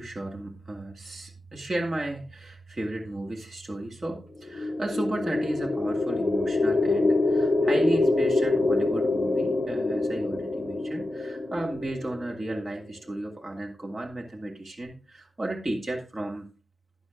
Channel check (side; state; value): both; normal; correlation 0.91